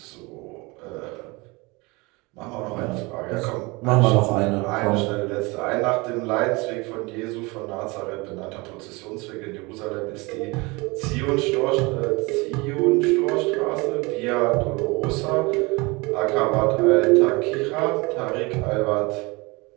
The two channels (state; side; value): quieter; left; 25.4 dB